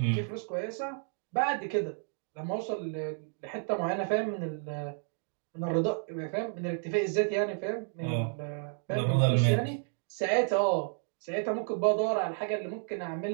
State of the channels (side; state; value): left; silent; 57 dB below the other